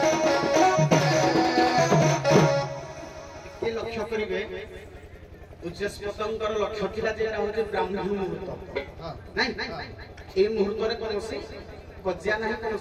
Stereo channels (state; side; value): identical; both; correlation 1.00